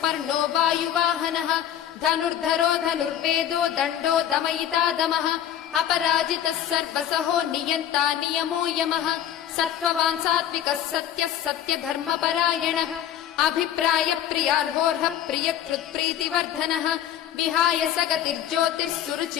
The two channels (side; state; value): right; quieter; 10.6 dB